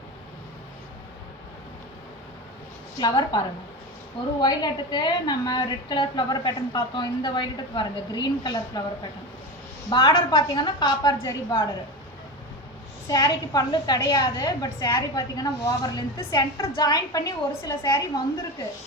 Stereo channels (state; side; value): normal; both; correlation 0.23